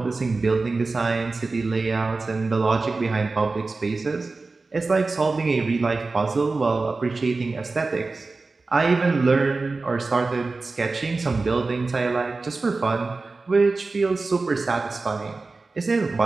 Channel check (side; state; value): left; quieter; 3.7 dB